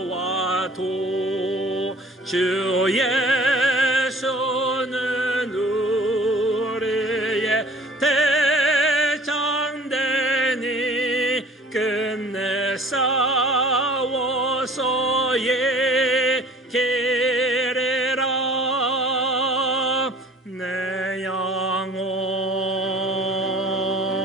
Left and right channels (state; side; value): normal; both; correlation 0.49